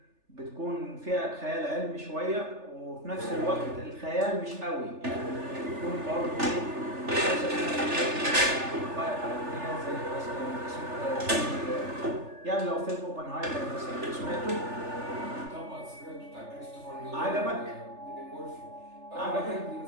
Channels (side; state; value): left; late; 3.4 ms